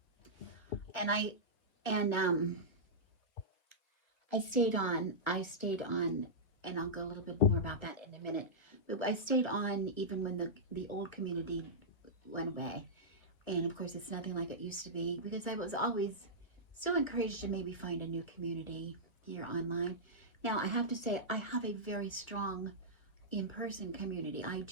And I stayed on, and I'll go a little bit more about that in a minute. But I stayed on even when the old community went away. And of course, it's nothing like it used to be, because I was always so encouraged to maybe find a new community here online. Now, I have to say, I have a very strong in-person community. I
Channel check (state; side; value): late; right; 1.1 ms